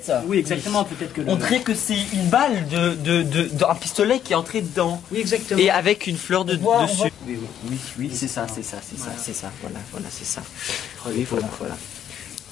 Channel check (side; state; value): right; quieter; 10.0 dB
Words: Oui, exactement. Peut-être que. On dirait que c'est une balle d'un pistolet qui est entré dedans. Oui, exactement. Et avec une fleur dessus. Oui, c'est ça. Voilà, c'est ça. Oui, voilà.